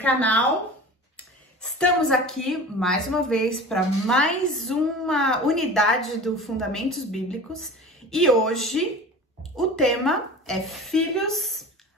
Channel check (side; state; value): both; normal; correlation 0.37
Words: Estamos aqui mais uma vez para mais uma unidade do Fundamentos Bíblicos e hoje o tema é Filhos